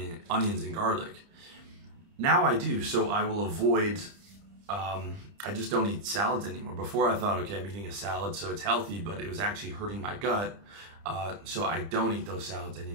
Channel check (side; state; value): left; late; 30 ms